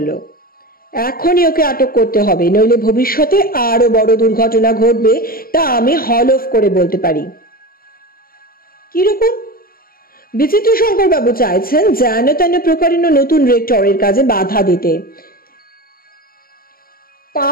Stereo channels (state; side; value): late; right; 0.43 ms